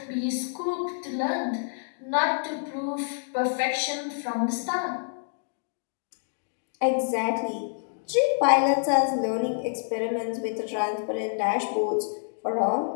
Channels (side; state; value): right; silent; digital silence